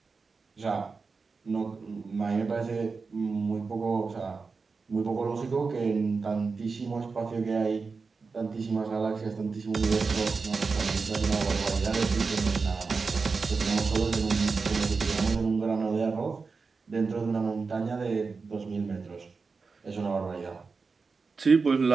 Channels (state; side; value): quieter; left; 4.6 dB